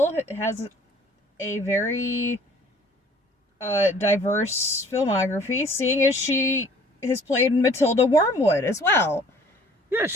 has a very diverse filmography, seeing as she has played Matilda Wormwood as well. Yeah,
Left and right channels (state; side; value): normal; both; correlation 0.54